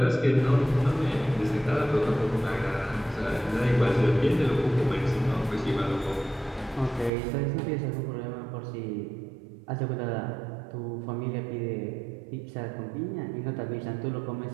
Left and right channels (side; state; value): left; drops out; at 7.1 s